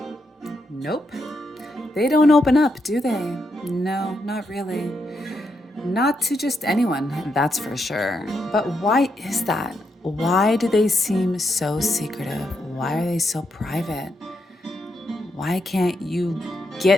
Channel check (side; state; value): both; normal; correlation 0.81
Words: Nope. They don't open up, do they? No, not really. Not to just anyone, that's for sure. But why is that? Why do they seem so secretive? Why are they so private? Why can't you